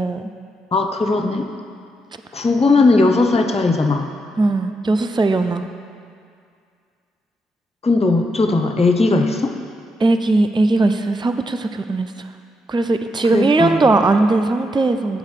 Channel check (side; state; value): both; normal; correlation 0.82